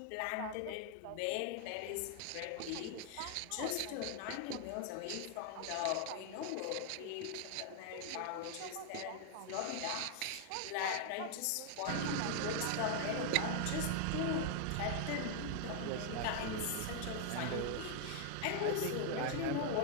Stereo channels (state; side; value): different; both; correlation 0.00